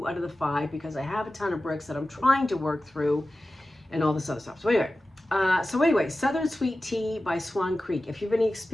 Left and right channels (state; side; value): normal; both; correlation 0.95